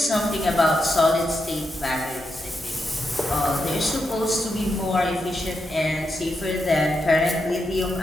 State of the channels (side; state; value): both; normal; correlation 0.85